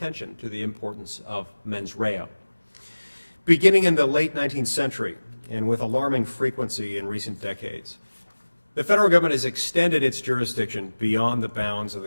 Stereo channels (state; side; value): inverted; both; correlation -1.00